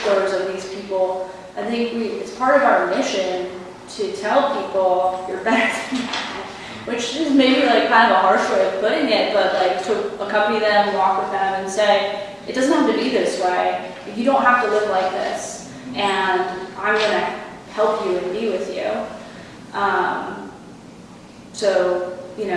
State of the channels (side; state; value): both; identical; correlation 1.00